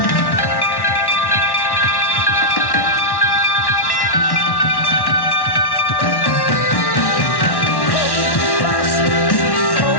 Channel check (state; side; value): late; right; 1.1 ms